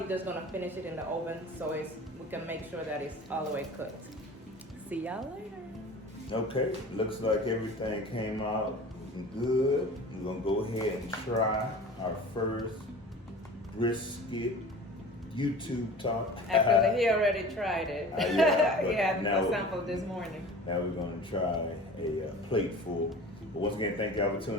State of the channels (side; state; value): both; normal; correlation 0.39